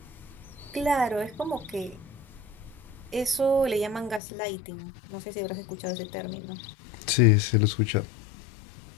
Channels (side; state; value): right; drops out; at 4.2 s